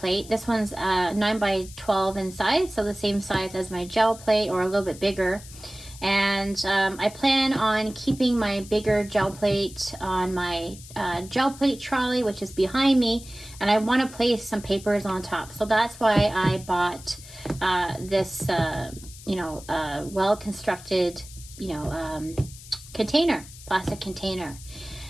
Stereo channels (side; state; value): left; noise; hiss, 17 dB below the sound